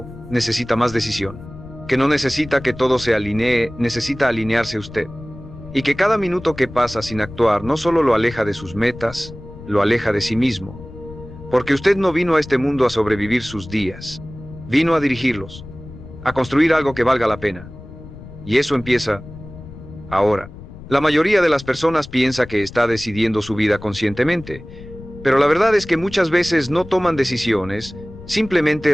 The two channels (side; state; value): left; noise; rumble, 16 dB below the sound